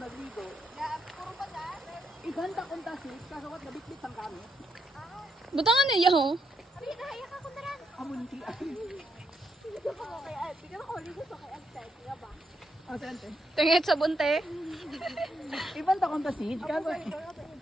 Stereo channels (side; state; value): both; normal; correlation 0.79